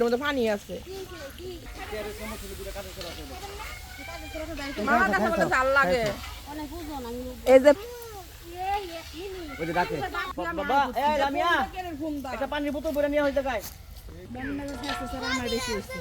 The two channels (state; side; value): identical; both; correlation 1.00